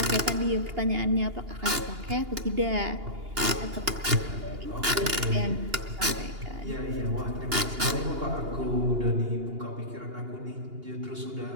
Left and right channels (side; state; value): left; late; 2.8 ms